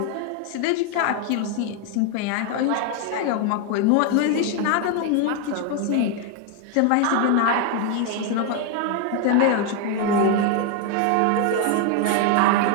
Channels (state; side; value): different; both; correlation 0.01